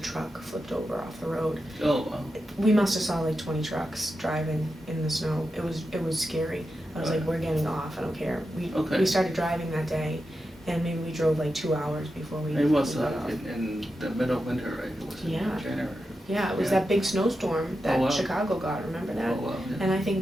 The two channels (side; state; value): both; normal; correlation 0.89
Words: flipped over off the road. Oh wow. We must have saw like 20 trucks driving in the snow. It was scary. I was like, we're getting off. I don't care. We started driving that day, and maybe we drove like 2 hours before we. It was got off. in the middle of winter, right? It was in January. Yeah, it was that big snowstorm that Chicago got. Remember that? Oh wow. Yeah. And I think